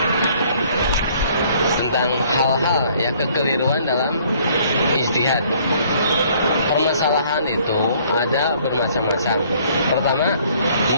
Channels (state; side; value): inverted; both; correlation -0.60